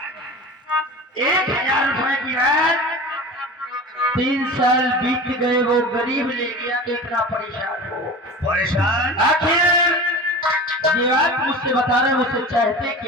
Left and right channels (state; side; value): normal; both; correlation 0.34